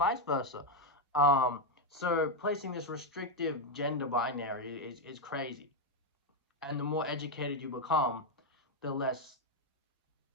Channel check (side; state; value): both; normal; correlation 0.04